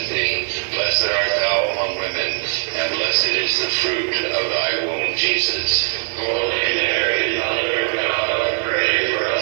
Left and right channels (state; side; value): silent; left; 61 dB below the other